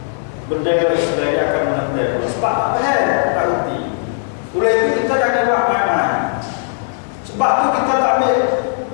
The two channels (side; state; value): right; silent; digital silence